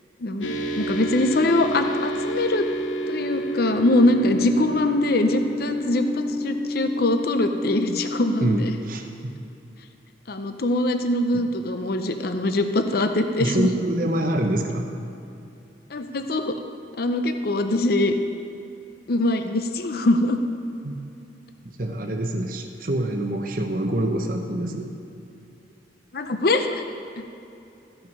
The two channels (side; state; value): both; normal; correlation 0.53